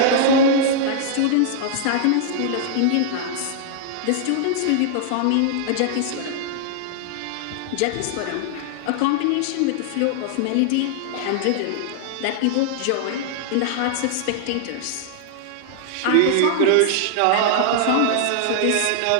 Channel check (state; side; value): different; both; correlation -0.01